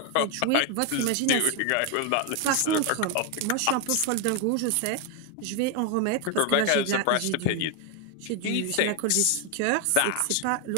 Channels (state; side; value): different; both; correlation 0.01